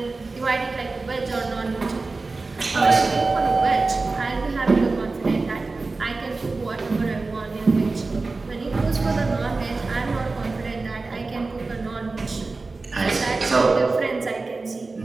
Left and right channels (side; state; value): left; quieter; 3.7 dB